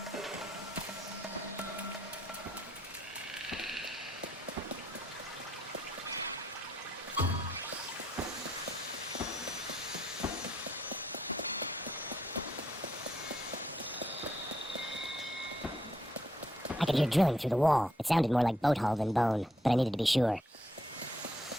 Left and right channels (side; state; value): both; normal; correlation 0.74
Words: I could hear drilling through the wall. It sounded more like boat hull than bone, but I needed to be sure.